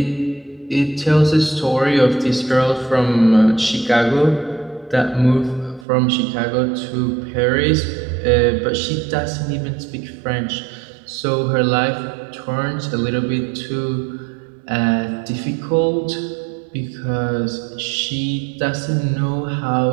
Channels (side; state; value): left; drops out; at 5.9 s